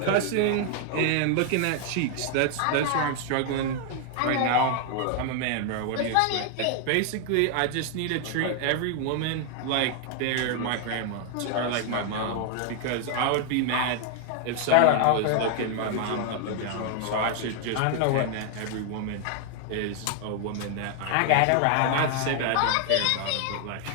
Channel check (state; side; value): different; both; correlation 0.00